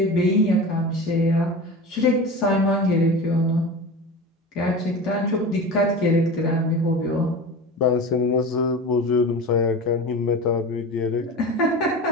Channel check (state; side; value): normal; both; correlation 0.31